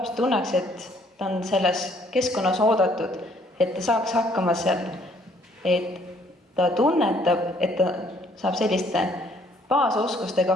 tunneks, et ta on selles keskkonnas oodatud, et ta saaks hakkama seal, et ta tunnetab, et ta saab selliste baasoskustega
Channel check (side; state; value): both; normal; correlation 0.63